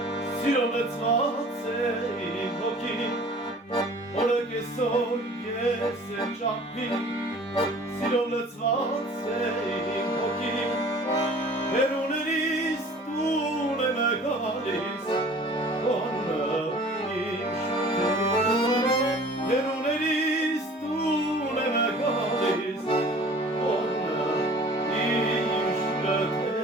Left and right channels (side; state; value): both; normal; correlation 0.47